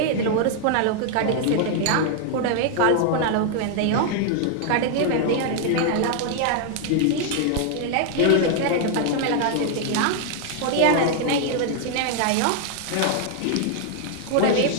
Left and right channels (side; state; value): both; different; correlation 0.00